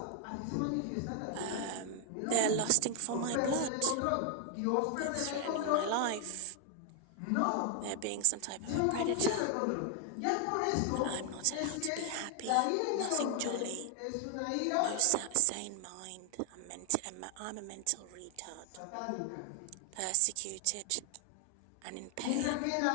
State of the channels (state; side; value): different; both; correlation 0.00